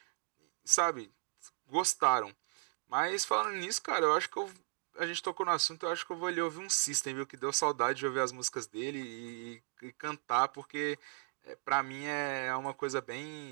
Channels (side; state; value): left; silent; digital silence